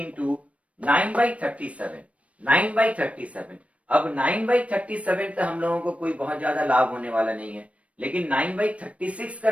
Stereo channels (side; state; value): left; late; 0.064 ms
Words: 9 बाई 37, 9 बाई 37। अब 9 बाई 37 तो हम लोगों को कोई बहुत ज्यादा लाभ होने वाला नहीं है, लेकिन 9 बाई 36